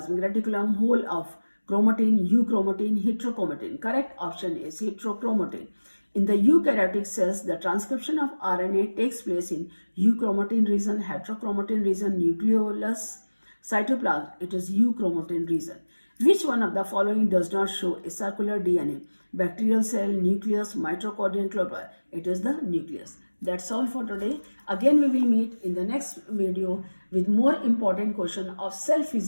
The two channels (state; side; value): inverted; both; correlation -1.00